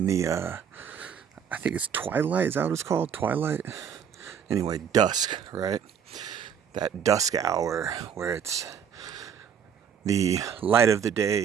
the, I think it's twilight. Is that what it's called? Twilight? Anyway, dusk, right? That dusk hour where the light of the day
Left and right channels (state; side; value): quieter; left; 8.0 dB